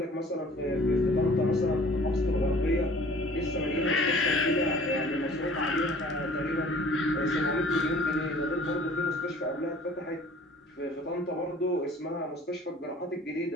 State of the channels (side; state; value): both; normal; correlation 0.51